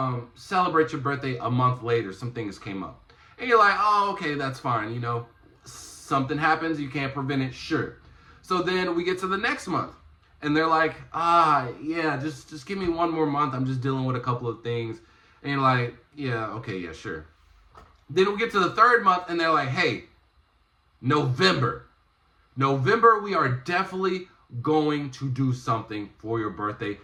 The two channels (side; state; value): both; identical; correlation 1.00